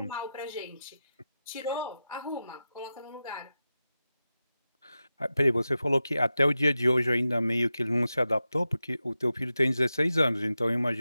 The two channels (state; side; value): inverted; both; correlation -0.92